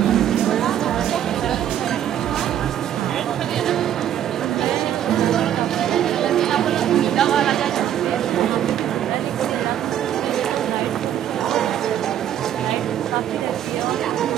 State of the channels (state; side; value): quieter; left; 10.7 dB